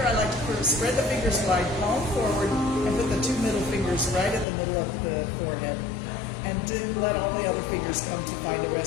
I like to spread the fingers wide, palm forward, and put the two middle fingers right at the middle of the forehead. And then let all the other fingers come to find a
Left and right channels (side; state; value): right; drops out; at 4.5 s